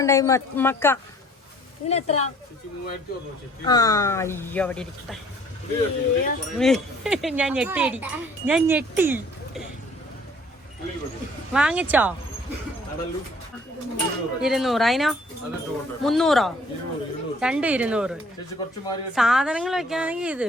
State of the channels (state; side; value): normal; both; correlation 0.57